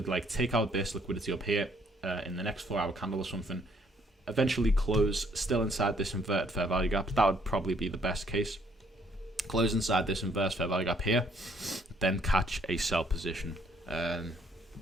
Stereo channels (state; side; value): normal; both; correlation 0.66